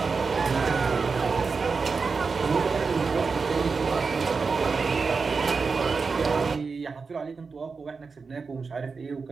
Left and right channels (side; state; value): left; quieter; 4.8 dB